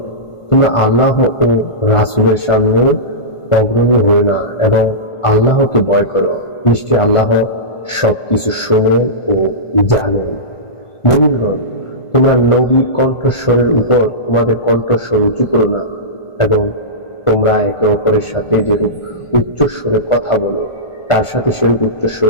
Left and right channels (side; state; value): right; late; 1.5 ms